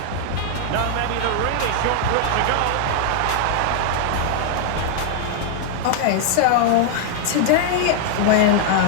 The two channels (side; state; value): both; different; correlation -0.01